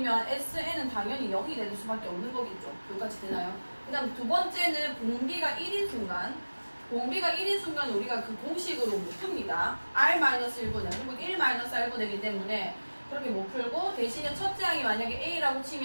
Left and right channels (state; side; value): inverted; both; correlation -1.00